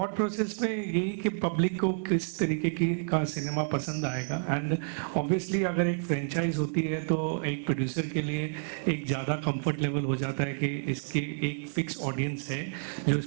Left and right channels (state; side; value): silent; left; digital silence